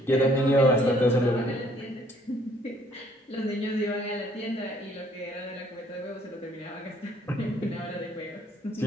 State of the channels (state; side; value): normal; both; correlation 0.62